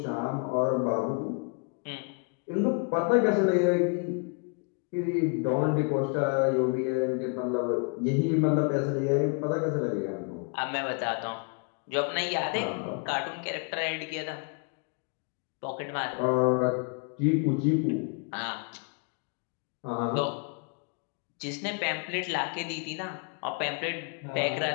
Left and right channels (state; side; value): quieter; right; 37.4 dB